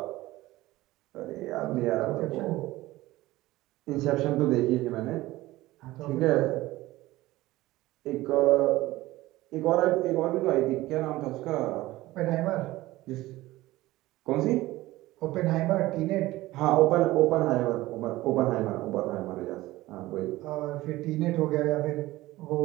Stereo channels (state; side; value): quieter; left; 17.7 dB